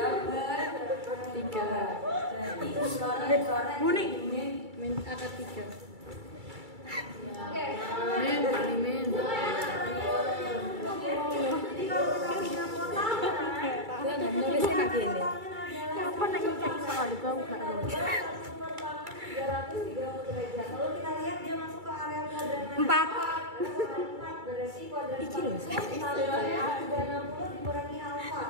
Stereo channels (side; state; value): left; late; 2.3 ms